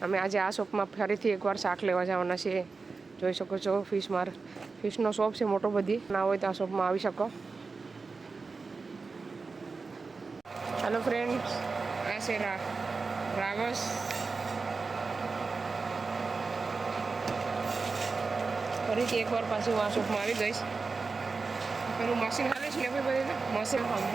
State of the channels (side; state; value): left; quieter; 4.3 dB